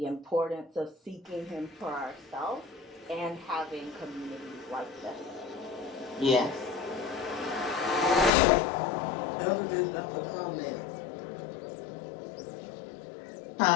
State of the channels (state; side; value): drops out; right; at 8.3 s